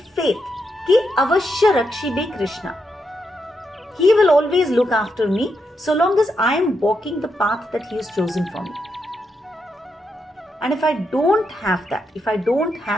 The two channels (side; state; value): both; normal; correlation 0.83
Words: Ki avashya rakshibe Krishna. He will always look after me so long as I am walking the path that he has chosen for me. And if I don't have that